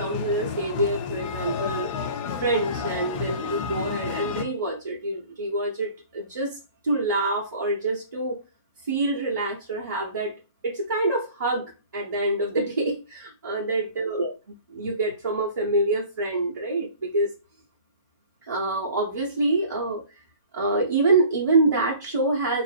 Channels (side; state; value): both; inverted; correlation -0.46